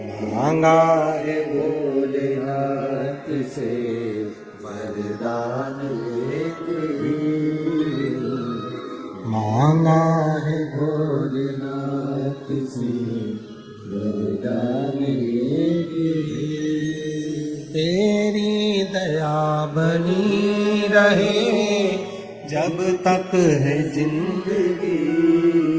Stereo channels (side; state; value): both; identical; correlation 1.00